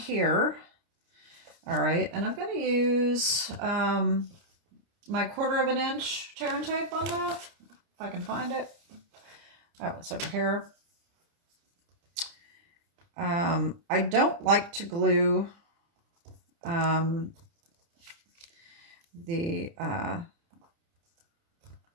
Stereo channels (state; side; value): late; left; 30 ms